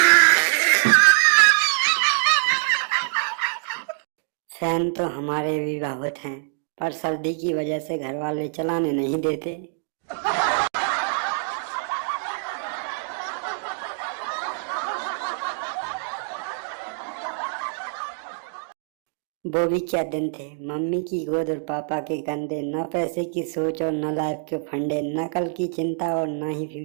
फैन तो हमारे भी बहुत हैं, पर सर्दी की वजह से घर वाले चलाने नहीं देते। वो भी क्या दिन थे। मम्मी की गोद और पापा के कंधे, न पैसे की सोच और न लाइफ के फंडे, न कल की चिंता और न ही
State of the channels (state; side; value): silent; left; digital silence